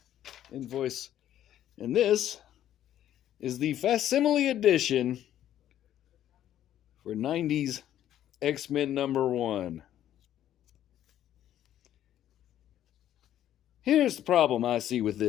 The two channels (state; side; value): quieter; right; 11.6 dB